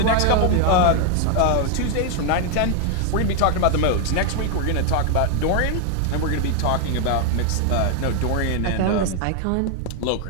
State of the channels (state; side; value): different; both; correlation 0.01